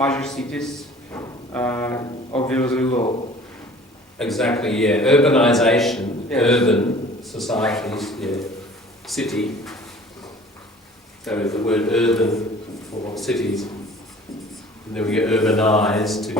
cities, obviously low. Exactly, yeah. Urbanization, urban societies, city. So the word urban for cities. And then we get urbanized to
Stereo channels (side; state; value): both; normal; correlation 0.48